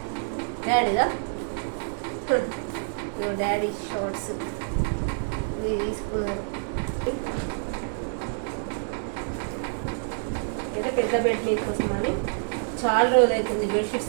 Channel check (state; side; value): silent; left; 60 dB below the other